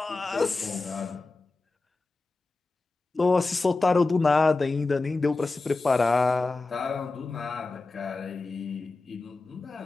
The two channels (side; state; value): right; quieter; 3.5 dB